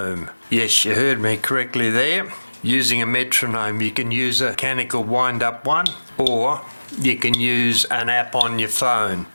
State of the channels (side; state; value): both; inverted; correlation -1.00